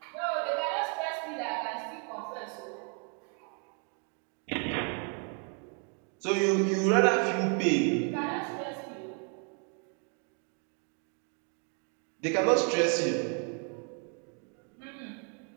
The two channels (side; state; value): left; quieter; 38.6 dB